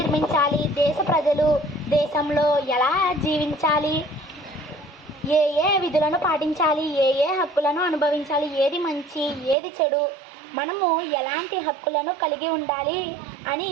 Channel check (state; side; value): drops out; left; at 9.6 s